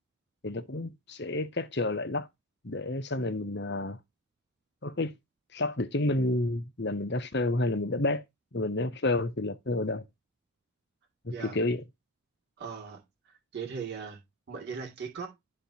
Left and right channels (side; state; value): both; normal; correlation 0.24